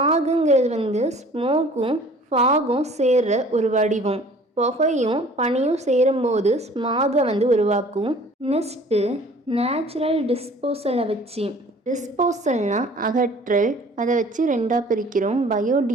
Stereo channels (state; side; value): normal; both; correlation 0.50